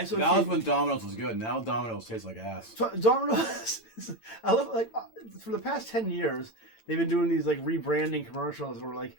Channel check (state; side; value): late; right; 8.9 ms